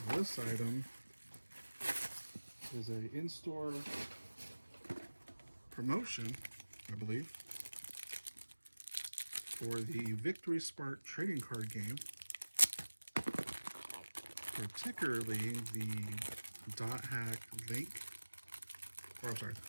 This item is a in-store promotion, I believe, for the Victory Spark trading card game, particularly the Dothack Link, or I'm sorry,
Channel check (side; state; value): both; inverted; correlation -1.00